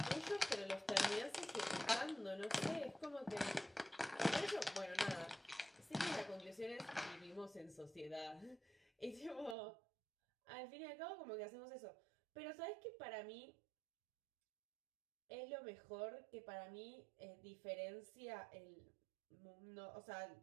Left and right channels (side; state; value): left; drops out; at 9.6 s